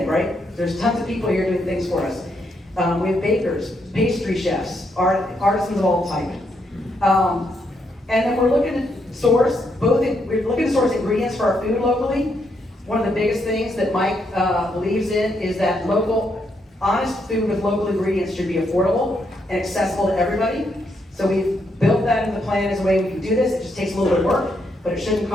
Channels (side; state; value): both; normal; correlation 0.77